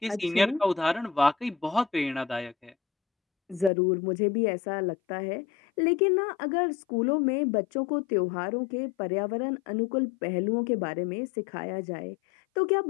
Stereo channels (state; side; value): drops out; right; at 3.7 s